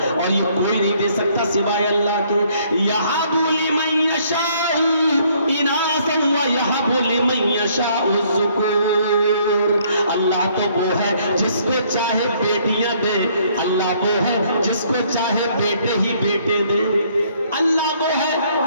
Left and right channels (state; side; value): inverted; both; correlation -0.64